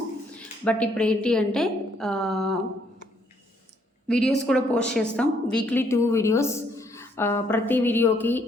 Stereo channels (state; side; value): normal; both; correlation 0.69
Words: బట్ ఇప్పుడు ఏంటి అంటే వీడియోస్ కూడా పోస్ట్ చేస్తాం. Weekly 2 videos. ప్రతి వీడియోకి